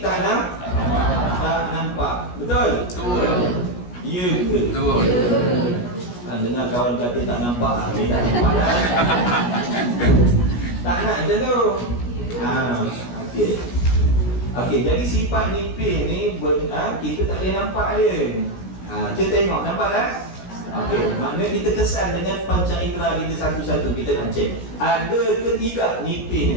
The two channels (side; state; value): right; late; 17 ms